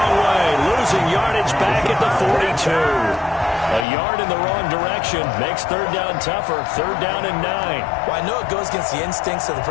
way. Losing yardage back at the 42. A yard in the wrong direction makes 3rd down tougher. 3rd down and 9. Well, I know it goes against the instincts of the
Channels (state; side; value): drops out; right; at 3.9 s